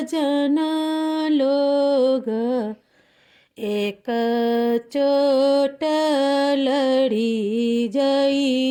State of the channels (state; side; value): identical; both; correlation 1.00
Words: लोग एक चोट लड़ी